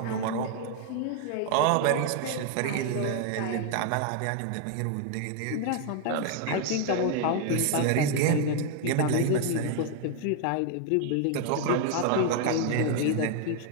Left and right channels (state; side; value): different; both; correlation 0.00